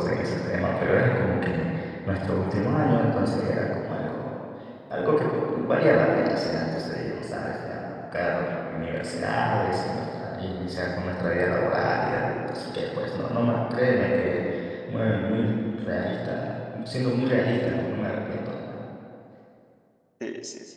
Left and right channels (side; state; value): both; identical; correlation 1.00